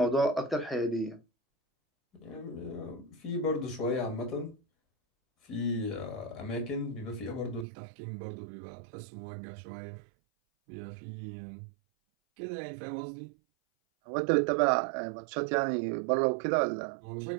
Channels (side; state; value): left; drops out; at 7.7 s